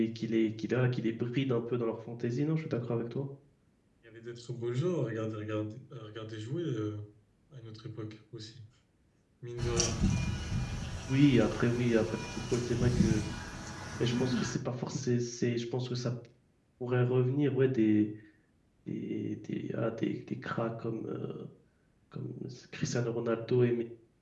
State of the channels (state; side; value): identical; both; correlation 1.00